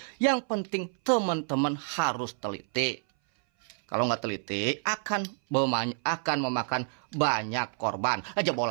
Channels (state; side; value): silent; left; 59 dB below the other